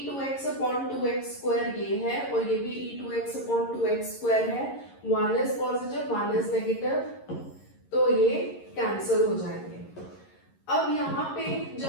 अपॉन 2x स्क्वायर ये है और ये भी e2x अपॉन 2x स्क्वायर है, 1 इज पॉजिटिव 1 इज नेगेटिव, तो ये कैंसिल हो जाएंगे। अब यहाँ पे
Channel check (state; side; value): late; right; 11 ms